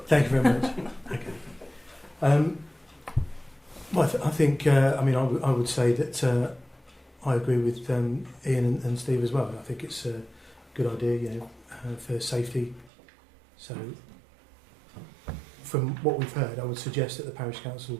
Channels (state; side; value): drops out; left; at 12.9 s